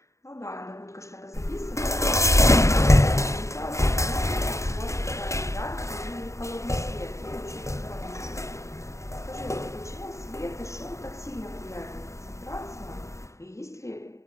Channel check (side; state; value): right; late; 0.14 ms